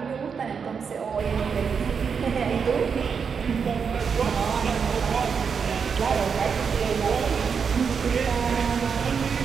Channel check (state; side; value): quieter; left; 6.2 dB